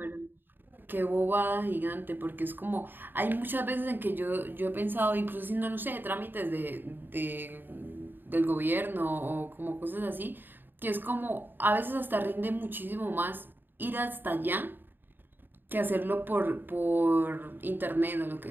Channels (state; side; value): late; left; 0.094 ms